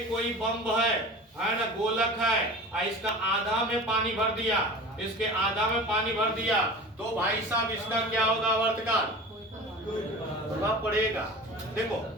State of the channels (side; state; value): both; normal; correlation 0.36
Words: कोई बम्ब है ना, गोलक है, और इसका आधा में पानी भर दिया, इसके आधा में पानी भर दिया, तो भाई साहब इसका क्या होगा, आवर्तकाल प्रभाव पड़ेगा। देखो